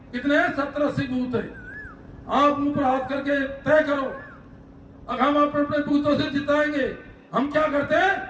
कितने हैं? 70-80 बूथ है। आप मुंह पर हाथ करके तय करो, अब हम अपने बूथों से जिताएंगे। हम क्या करते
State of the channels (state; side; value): identical; both; correlation 1.00